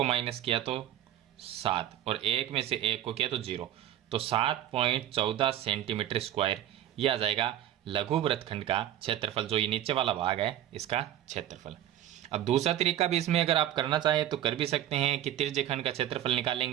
माइनस किया तो 7 और 1 में से 1 को किया तो 0, तो 7.14 सेंटीमीटर स्क्वायर ये आ जाएगा लघु वृत्तखंड का क्षेत्रफल, जो ये नीचे वाला भाग है इसका क्षेत्रफल। अब दूसरा तरीका भी इसमें अगर आप करना चाहें तो कर भी सकते हैं कि त्रिज्यखंड का क्षेत्रफल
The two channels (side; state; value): left; quieter; 12.0 dB